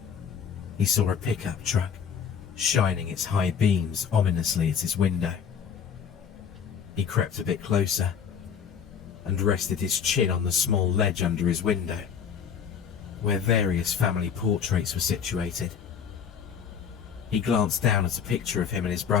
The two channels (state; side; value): quieter; right; 7.4 dB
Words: He saw a pickup truck shining its high beams ominously at his window. He crept a bit closer and rested his chin on the small ledge under his window, where various family portraits were situated. He glanced down at a picture of him and his